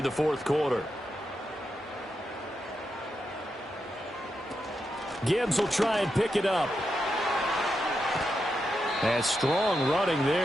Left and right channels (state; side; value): normal; both; correlation 0.86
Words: the 4th quarter. Gibbs will try and pick it up. And strong running